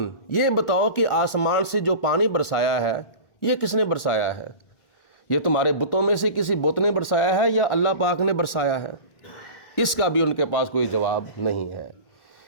یہ بتاؤ کہ آسمان سے جو پانی برسایا ہے یہ کس نے برسایا ہے؟ یہ تمہارے بتوں میں سے کسی بت نے برسایا ہے یا اللہ پاک نے برسایا ہے؟ اس کا بھی ان کے پاس کوئی جواب نہیں ہے۔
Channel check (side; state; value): right; late; 1.4 ms